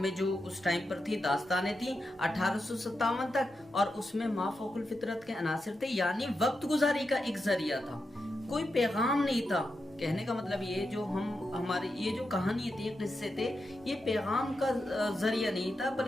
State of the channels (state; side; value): normal; both; correlation 0.87